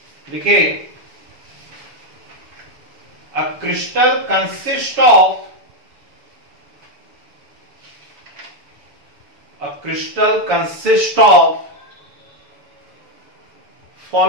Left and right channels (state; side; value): late; left; 7.1 ms